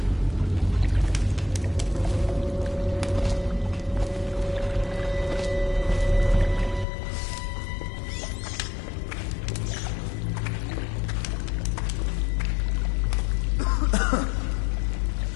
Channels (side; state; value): right; drops out; at 6.9 s